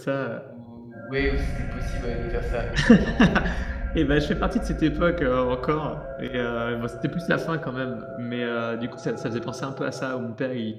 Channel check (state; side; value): identical; both; correlation 1.00